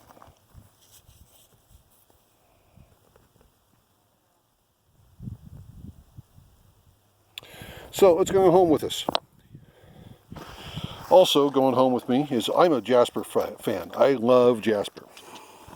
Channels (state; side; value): identical; both; correlation 1.00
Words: So let's go home with us. Also going home with me is I'm a jasper fan. I love jasper.